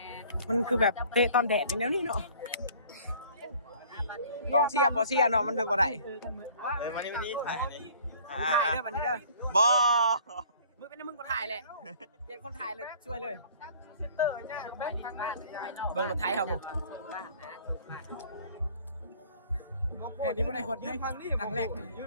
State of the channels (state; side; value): inverted; both; correlation -0.53